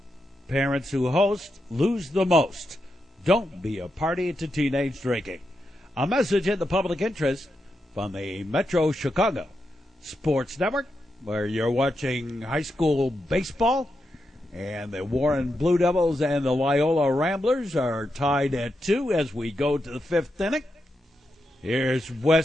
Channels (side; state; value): both; normal; correlation 0.86